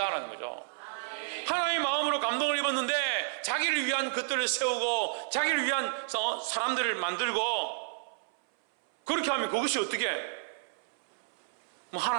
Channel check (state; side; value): silent; left; 57 dB below the other